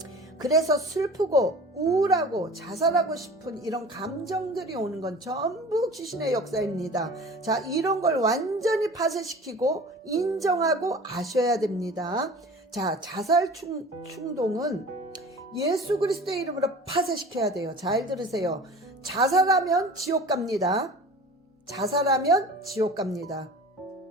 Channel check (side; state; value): both; normal; correlation 0.40